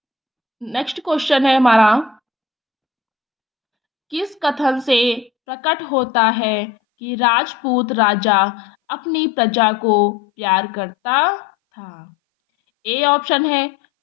नेक्स्ट क्वेश्चन है हमारा, किस कथन से प्रकट होता है कि राजपूत राजा अपनी प्रजा को प्यार करता था? ए ऑप्शन है,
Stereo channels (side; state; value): right; drops out; at 5.3 s